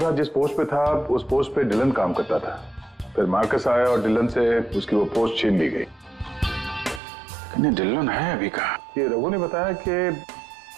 आज जिस पोस्ट पे था उस पोस्ट पे डिलन काम करता था, फिर मार्कस आया और डिलन से उसकी वो पोस्ट छीन ली गई। डिलन है अभी कहाँ? ये रघु ने बताया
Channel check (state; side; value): drops out; left; at 7.0 s